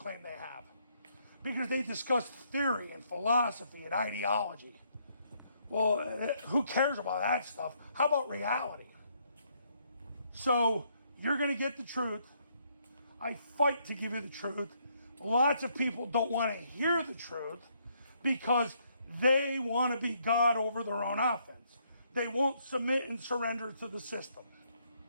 they have, because they discuss theory and philosophy and ideology. Well, who cares about that stuff? How about reality? So you're going to get the truth. I fight to give you the truth. Lots of people don't want to hear the truth because they want to be God over their own offense. They won't submit and surrender to the system.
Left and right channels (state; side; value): inverted; both; correlation -0.71